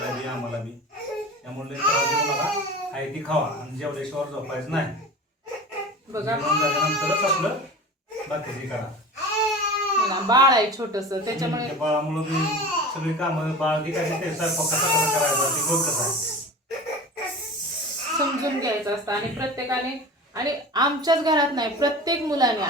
बी आम्हाला बी. त्यामुळे त्रास देऊ नका, आहे ती खावा आणि जेवल्याशिवाय झोपायचं नाही. बघा जेवण झाल्यानंतरच आपलं बाकीची करा. बाळ आहे छोटस, त्याच्यामुळे बाळामुळे बी सगळी कामं बाळ बी काय ते स्वयंपाक कसा करायचा ते बघ कसं आहे समजून घ्यायचं असतं. आणि प्रत्येकाने, आणि आमच्याच घरात नाही, प्रत्येक मुलाने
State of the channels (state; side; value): normal; both; correlation 0.34